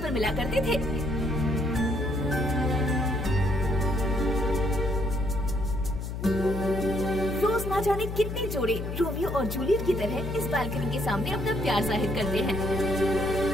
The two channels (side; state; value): left; noise; hum, 5 dB below the sound